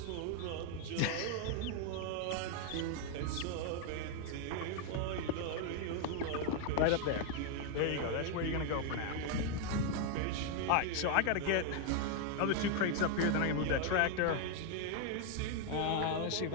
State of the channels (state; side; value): different; both; correlation 0.00